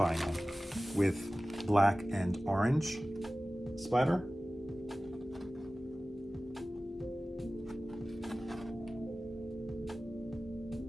with black and orange splatter.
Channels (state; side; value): normal; both; correlation 0.97